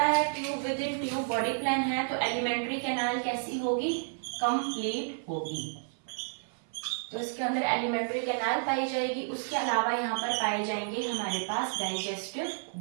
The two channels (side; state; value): left; silent; 56 dB below the other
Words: है tube with in tube body plan है, तो एलिमेंट्री कैनाल कैसी होगी? कंप्लीट होगी। तो इसके अंदर एलिमेंट्री कैनाल पाई जाएगी। उसके अलावा यहाँ पर पाए जाएंगे हमारे पास डाइजेस्टिव